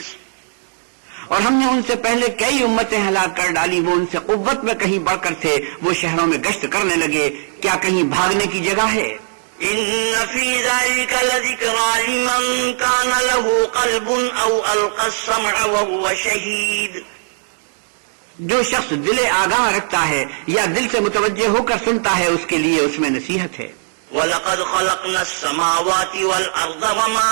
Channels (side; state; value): left; silent; digital silence